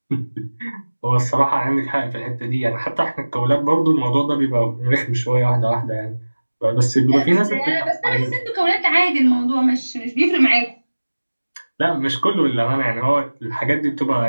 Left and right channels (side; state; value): both; inverted; correlation -1.00